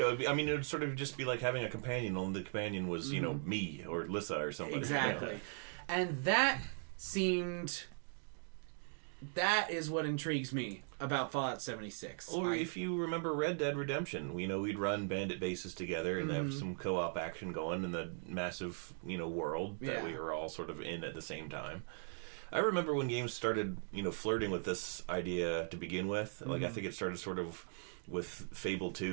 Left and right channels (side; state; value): left; silent; 52 dB below the other